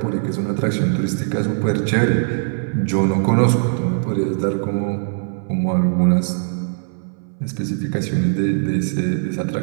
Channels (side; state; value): left; silent; 62 dB below the other